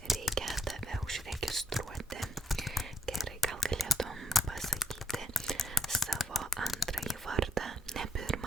reikia tave užregistruoti. Gerai, gal galėtum pasakyti savo antrąjį vardą. Ne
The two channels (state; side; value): normal; both; correlation 0.74